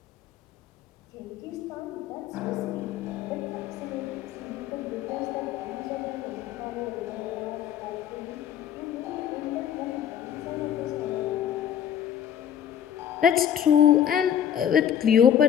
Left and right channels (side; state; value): right; quieter; 9.5 dB